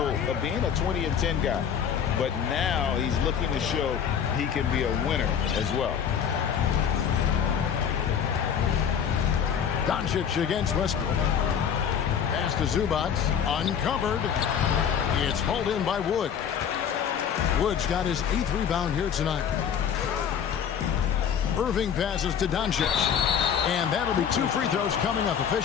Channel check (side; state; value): right; quieter; 8.0 dB